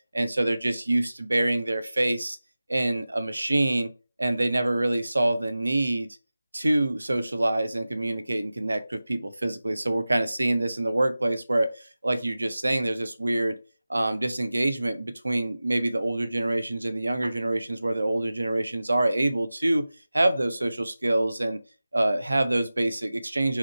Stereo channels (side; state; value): both; inverted; correlation -0.96